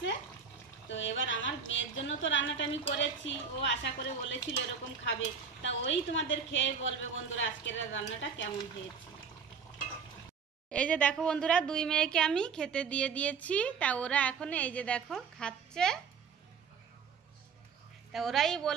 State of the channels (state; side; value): quieter; left; 6.1 dB